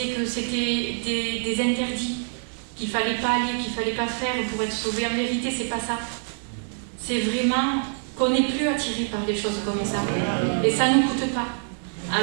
que c'était des interdits, qu'il ne fallait pas aller, qu'il ne fallait pas faire pour être sauvé, en vérité, c'est pas ça. C'est vraiment qu'on n'est plus attiré par des choses comme ça. Et ça ne nous coûte pas.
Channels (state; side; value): silent; left; digital silence